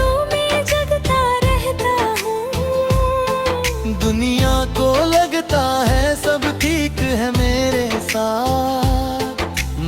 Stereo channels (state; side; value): identical; both; correlation 1.00